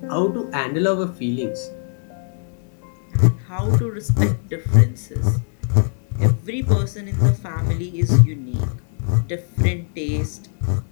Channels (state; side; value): silent; right; 65 dB below the other